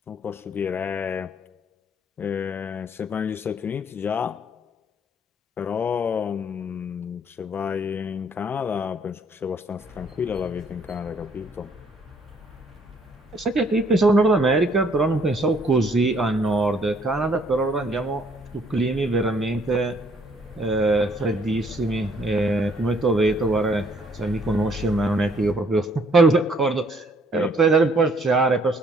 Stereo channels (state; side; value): normal; both; correlation 0.64